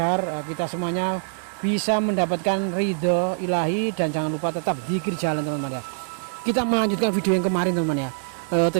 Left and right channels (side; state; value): left; silent; digital silence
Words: kita semuanya bisa mendapatkan ridho ilahi. Dan jangan lupa tetap zikir jalan teman-teman ya. Kita melanjutkan video yang kemarin teman-teman ya.